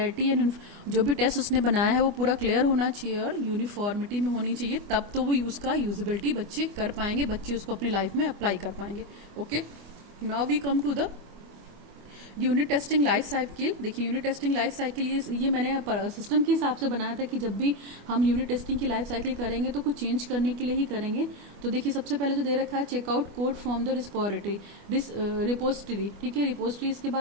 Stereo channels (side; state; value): left; late; 25 ms